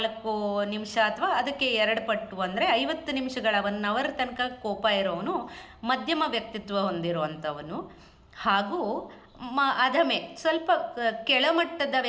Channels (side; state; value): both; identical; correlation 1.00